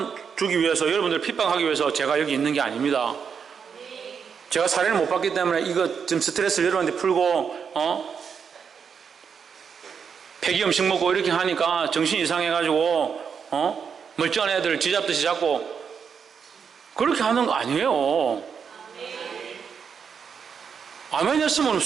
주기 위해서 여러분들을 핍박하기 위해서 제가 여기 있는 게 아닙니다. 제가 사례를 못 받기 때문에 이거 좀 스트레스를 여러분한테 풀고 폐기 음식 먹고 이렇게 하니까 정신 이상해가지고 멀쩡한 애들 쥐잡듯이 잡고 그렇게 하는 거 아니에요. 아멘 했으면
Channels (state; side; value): quieter; left; 6.7 dB